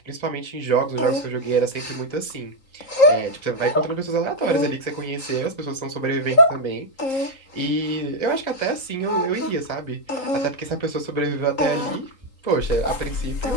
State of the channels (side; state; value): right; late; 3.8 ms